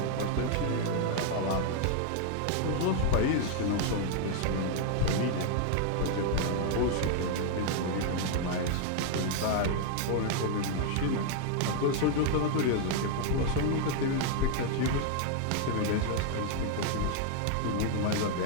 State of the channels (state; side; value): different; both; correlation 0.00